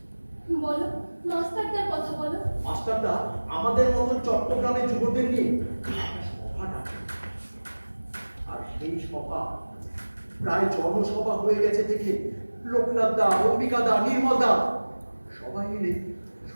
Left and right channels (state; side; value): inverted; both; correlation -1.00